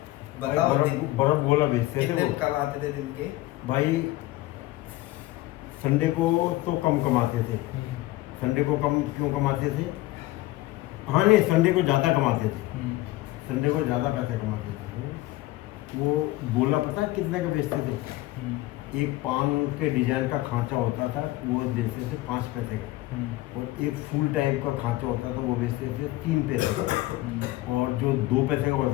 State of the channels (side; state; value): right; quieter; 18.0 dB